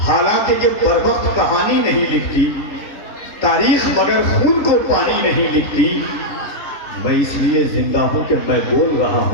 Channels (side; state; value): right; late; 3.8 ms